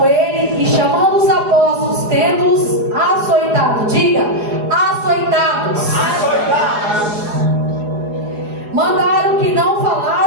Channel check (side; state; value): left; late; 4.8 ms